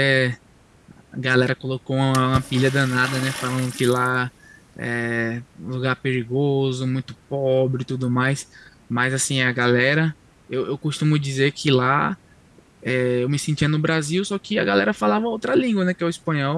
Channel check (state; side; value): identical; both; correlation 1.00